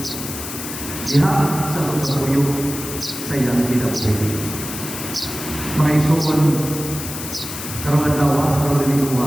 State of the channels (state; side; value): noise; left; hiss, 8 dB below the sound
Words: diha sa pagpapuyo sa iyang kinabuhi. Mga isuon, karong adlaw, karong